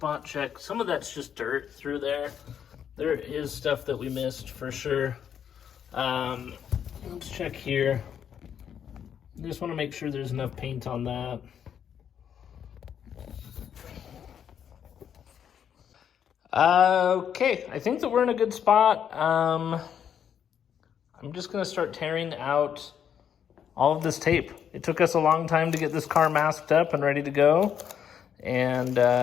check. Some of that's just dirt through there. There is stuff that we missed for sure. Let's check here. Just want to make sure there's enough paint on that. Okay, I think that we're in a good spot. I'm just gonna start tearing out all of this tape. It took us a long time to get this car masked up and ready to go, and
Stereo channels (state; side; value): quieter; right; 8.6 dB